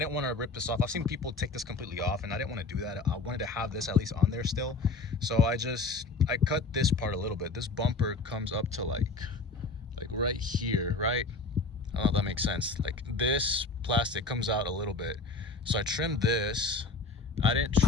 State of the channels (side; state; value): right; quieter; 3.7 dB